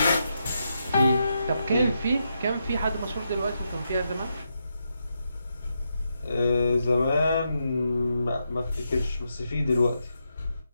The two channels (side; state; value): both; inverted; correlation -0.83